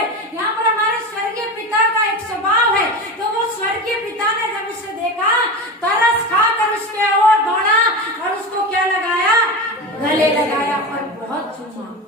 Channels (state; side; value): normal; both; correlation 0.24